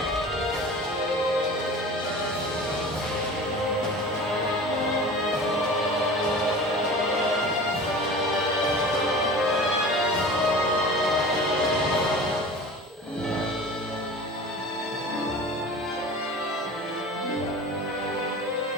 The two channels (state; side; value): normal; both; correlation 0.37